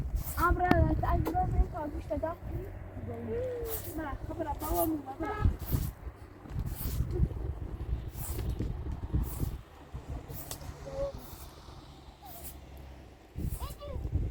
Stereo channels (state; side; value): identical; both; correlation 1.00